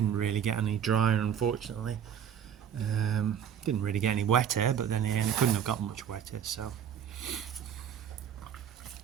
really get any drier unfortunately. Didn't really get any wetter, but then it couldn't have gotten much wetter. So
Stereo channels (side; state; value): left; quieter; 8.7 dB